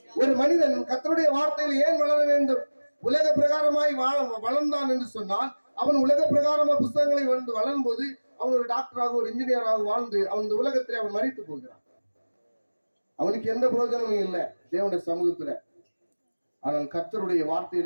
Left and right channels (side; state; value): both; inverted; correlation -1.00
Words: ஒரு மனிதன் கர்த்தருடைய வார்த்தையில் ஏன் வளர வேண்டும்? உலக பிரகாரமாய் வளர்ந்தான் என்று சொன்னால், அவன் உலக பிரகாரமா புத்தகங்களை வளரும் போது அவன் ஒரு டாக்டராக, ஒரு இன்ஜினியராக வாழ்ந்து அவன் இந்த உலகத்திலே அவன் மரித்து போகிறான். அவனுக்கு எந்த பிரயோஜனமும் இல்லை தேவனுடைய சமூகத்துல. ஆனால் கர்த்தருடைய